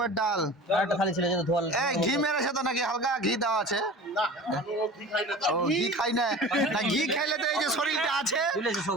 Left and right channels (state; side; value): normal; both; correlation 0.38